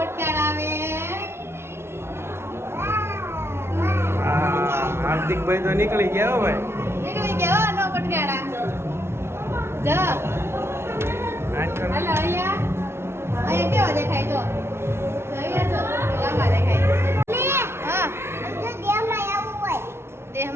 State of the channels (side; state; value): left; late; 0.12 ms